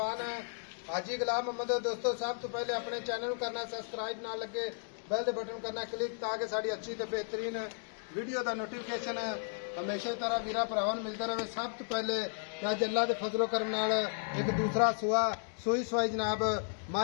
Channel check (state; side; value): silent; right; digital silence